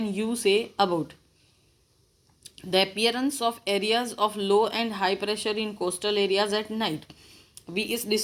you say about the appearance of areas of low and high pressure in coastal areas at night. अभी इस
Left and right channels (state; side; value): identical; both; correlation 1.00